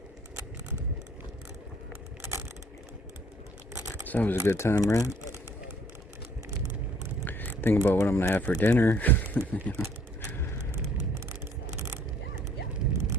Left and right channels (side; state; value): both; normal; correlation 0.60